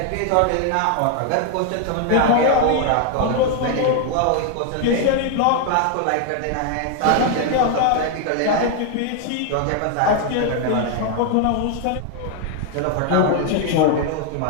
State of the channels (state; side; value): different; both; correlation 0.01